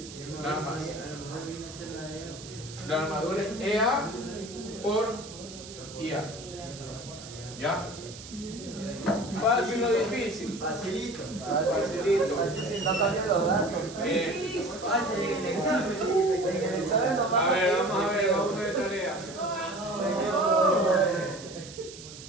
Nada más. La armadura es EA por IA. ¿Ya? Fácil o difícil. Facilito. Facilito. Así sin tanta miedo, ¿verdad? Fácil en el examen. En el examen nomás. A ver, vamos a ver tarea.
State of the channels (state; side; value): noise; right; hiss, 15 dB below the sound